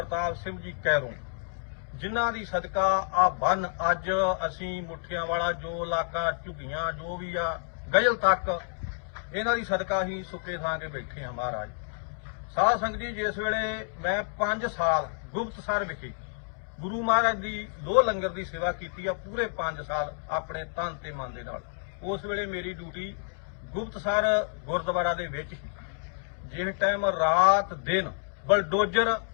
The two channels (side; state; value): right; silent; digital silence